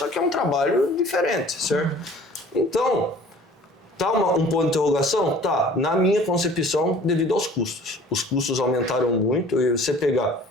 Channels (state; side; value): normal; both; correlation 0.49